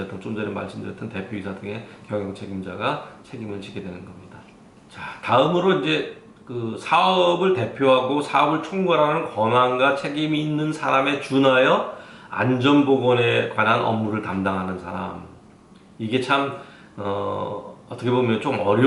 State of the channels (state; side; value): identical; both; correlation 1.00